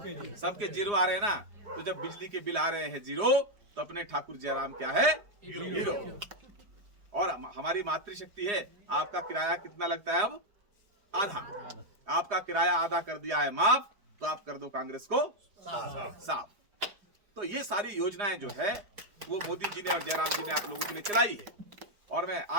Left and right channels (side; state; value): left; late; 4.9 ms